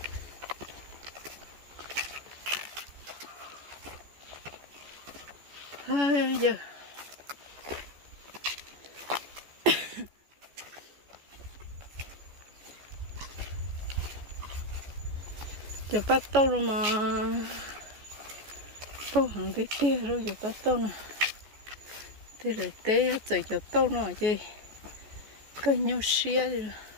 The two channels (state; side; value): late; left; 14 ms